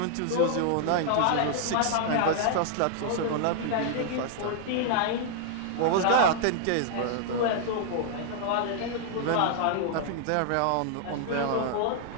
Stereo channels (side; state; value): both; different; correlation -0.01